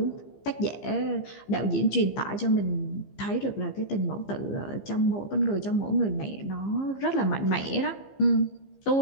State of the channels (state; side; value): late; right; 15 ms